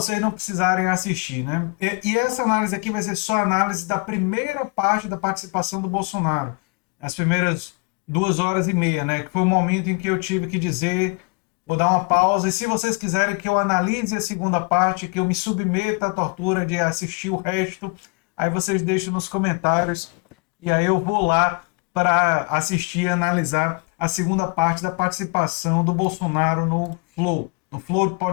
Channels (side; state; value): right; quieter; 32.3 dB